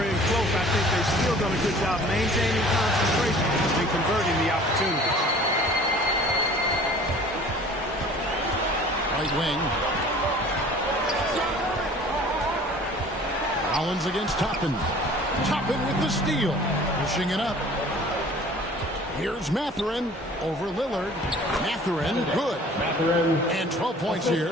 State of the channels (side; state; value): both; normal; correlation 0.48